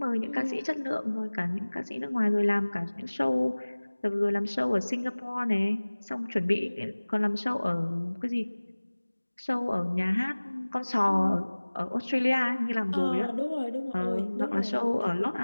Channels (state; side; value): inverted; both; correlation -1.00